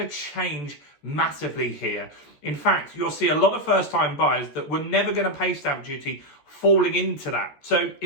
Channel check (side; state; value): right; late; 13 ms